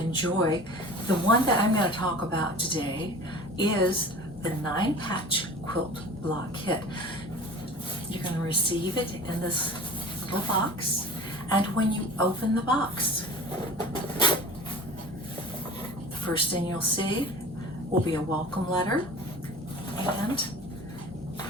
The one that I'm going to talk about today is the 9-patch quilt block kit. You're going to receive it in this little box, and when you open the box, the first thing you'll see will be a welcome letter and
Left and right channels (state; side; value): normal; both; correlation 0.39